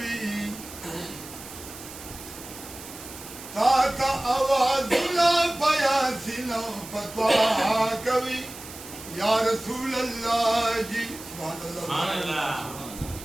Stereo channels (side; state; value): right; noise; hiss, 14 dB below the sound